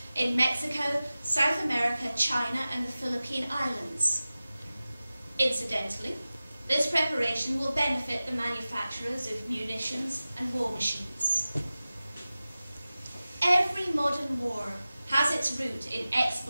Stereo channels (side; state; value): both; inverted; correlation -0.96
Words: in Mexico, South America, China, and the Philippine Islands. Incidentally, this preparation will benefit the manufacturers of munitions and war machines. Every modern war has its root in